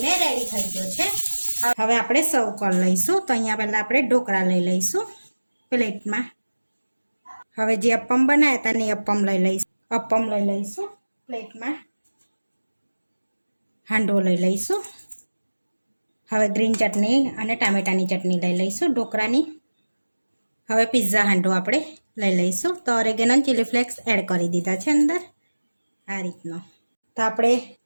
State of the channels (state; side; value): inverted; both; correlation -1.00